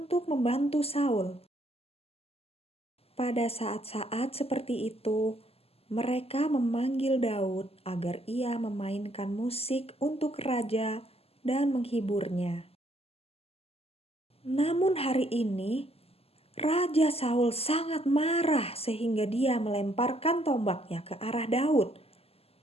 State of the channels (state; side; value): late; right; 0.29 ms